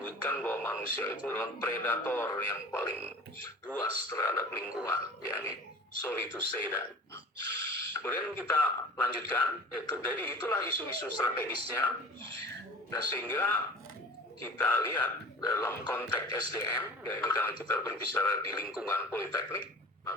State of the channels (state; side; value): normal; both; correlation 0.39